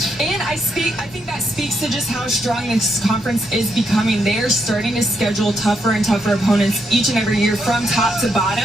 And I think that speaks to just how strong this conference is becoming. They are starting to schedule tougher and tougher opponents each and every year from top to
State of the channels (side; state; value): both; normal; correlation 0.78